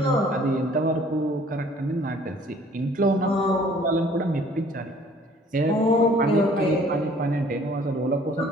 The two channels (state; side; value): normal; both; correlation 0.55